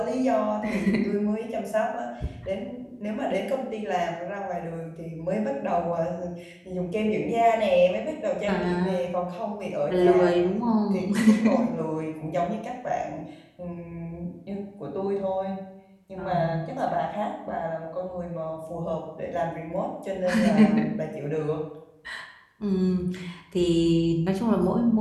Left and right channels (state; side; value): identical; both; correlation 1.00